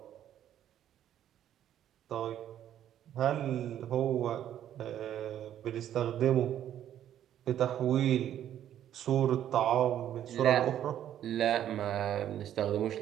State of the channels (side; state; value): left; quieter; 10.9 dB